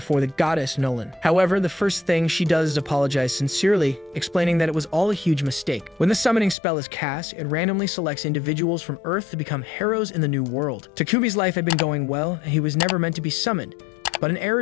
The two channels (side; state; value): right; drops out; at 6.6 s